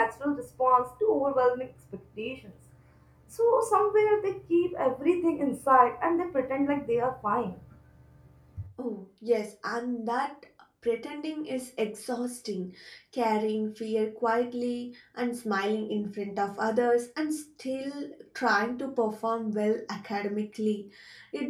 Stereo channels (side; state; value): both; identical; correlation 1.00